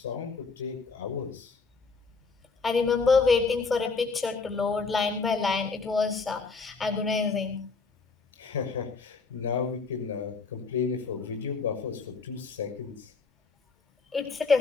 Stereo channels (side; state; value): right; quieter; 4.5 dB